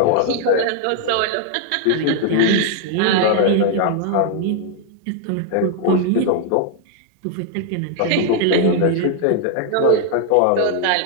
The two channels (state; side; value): different; both; correlation 0.00